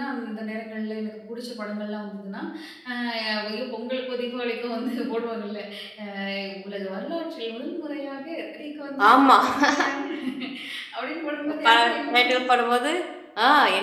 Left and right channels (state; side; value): identical; both; correlation 1.00